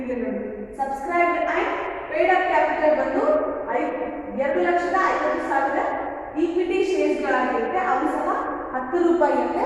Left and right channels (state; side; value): identical; both; correlation 1.00